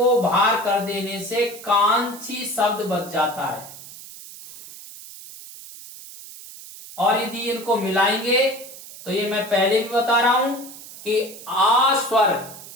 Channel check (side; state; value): right; noise; hiss, 16 dB below the sound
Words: बाहर कर देने से कांक्षी शब्द बच जाता है। और यदि इनको मिलाएंगे तो ये मैं पहले भी बता रहा हूं कि आ स्वर